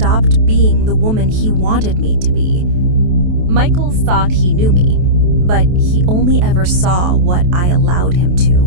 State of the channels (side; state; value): left; late; 28 ms